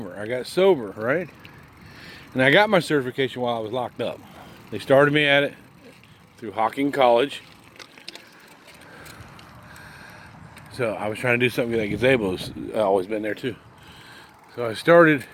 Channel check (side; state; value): both; identical; correlation 1.00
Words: I got sober, right? And I got my certification while I was locked up. They started me at it through Hocking College. So I was trying to do something like Gazebo's always been there too. So I started